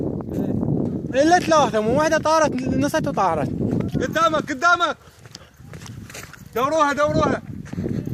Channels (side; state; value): both; identical; correlation 1.00